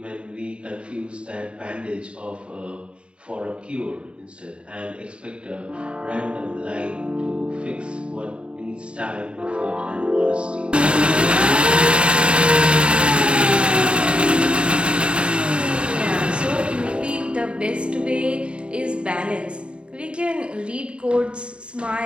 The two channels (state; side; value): late; left; 0.056 ms